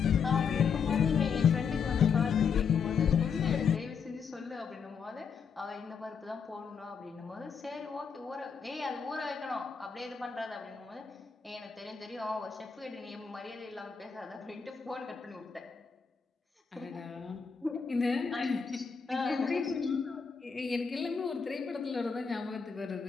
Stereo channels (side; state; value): right; quieter; 6.2 dB